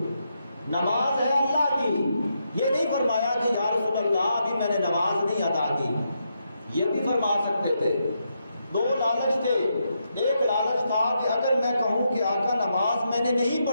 نماز ہے اللہ کی، یہ نہیں فرمایا کہ یا رسول اللہ ابھی میں نے نماز نہیں ادا کی، یہ بھی فرما سکتے تھے۔ دو لالچ تھے، ایک لالچ تھا کہ اگر میں کہوں کہ آقا نماز میں نے نہیں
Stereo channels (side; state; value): both; inverted; correlation -0.81